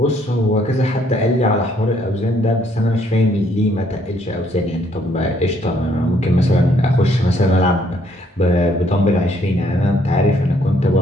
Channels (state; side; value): normal; both; correlation 0.67